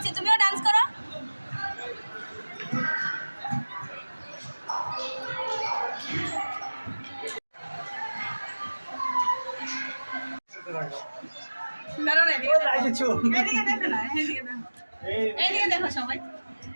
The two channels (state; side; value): inverted; both; correlation -1.00